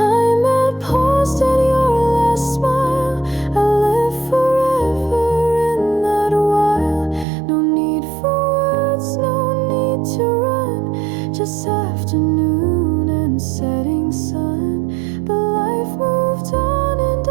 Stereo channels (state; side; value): drops out; left; at 7.2 s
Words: had paused at your last smile, I'd live forever in that while. No need for words, no need to run, just afternoon and setting sun. But life moved on and I